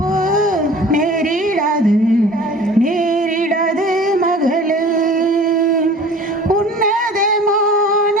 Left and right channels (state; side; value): normal; both; correlation 0.44